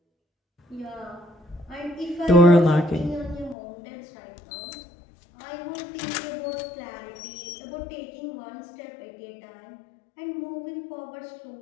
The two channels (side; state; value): right; drops out; at 3.6 s